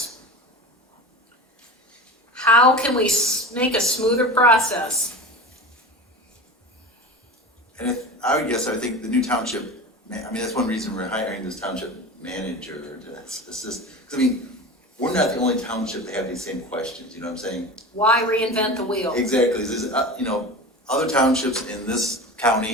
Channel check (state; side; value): normal; both; correlation 0.31